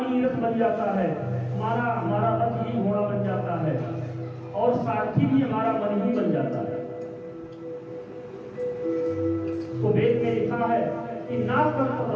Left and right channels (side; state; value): both; identical; correlation 1.00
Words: ही रथ बन जाता है, हमारा रथ ही घोड़ा बन जाता है, और सारथी भी हमारा मन ही बन जाता है। तो वेद में लिखा है कि ना कर्त